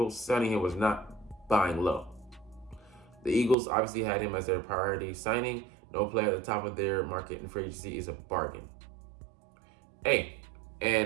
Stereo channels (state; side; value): drops out; left; at 3.6 s